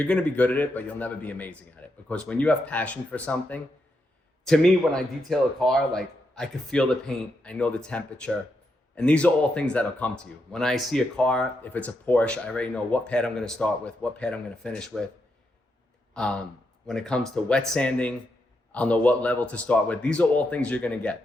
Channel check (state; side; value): normal; both; correlation 0.82